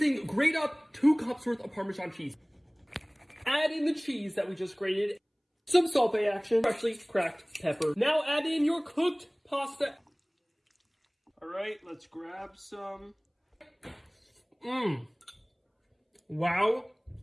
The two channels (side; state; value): both; identical; correlation 1.00